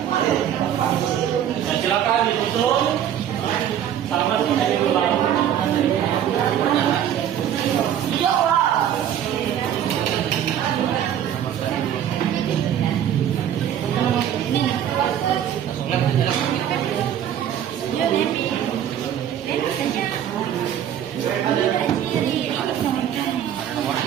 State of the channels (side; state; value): left; quieter; 10.1 dB